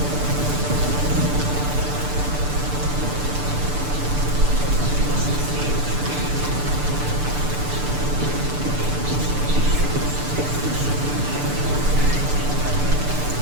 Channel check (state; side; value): late; left; 6.8 ms